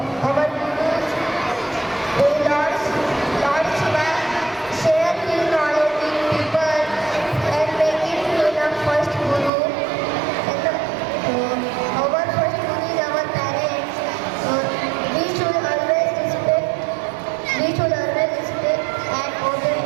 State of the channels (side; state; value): left; drops out; at 9.5 s